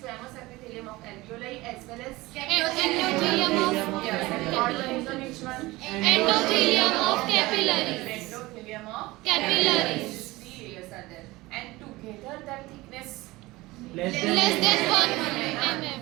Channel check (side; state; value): left; quieter; 20.2 dB